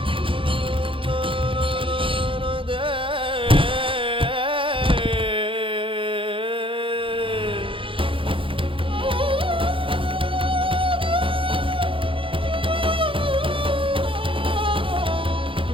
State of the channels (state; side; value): late; left; 0.25 ms